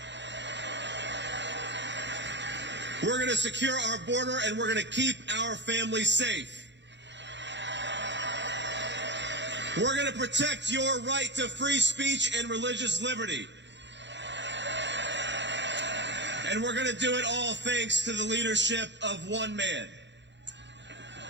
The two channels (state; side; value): late; left; 0.52 ms